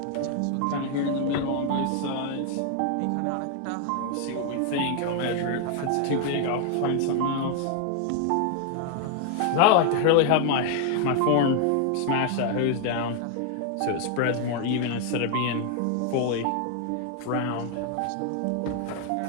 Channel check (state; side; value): different; both; correlation 0.00